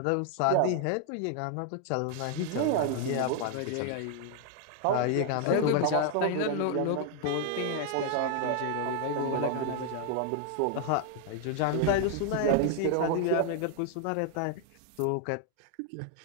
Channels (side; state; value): both; different; correlation 0.00